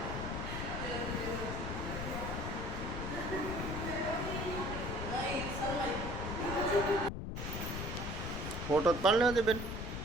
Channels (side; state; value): left; noise; rumble, 4 dB below the sound